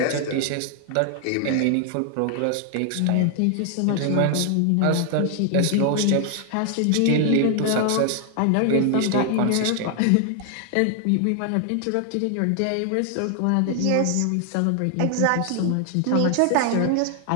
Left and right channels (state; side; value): different; both; correlation 0.00